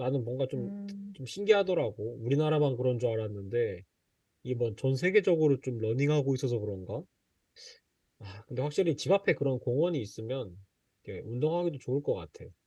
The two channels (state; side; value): identical; both; correlation 1.00